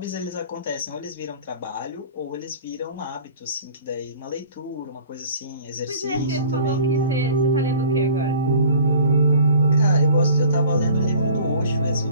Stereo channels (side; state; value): both; inverted; correlation -0.47